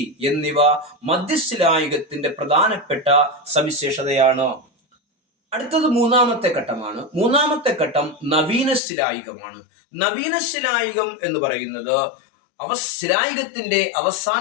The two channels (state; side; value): drops out; right; at 8.8 s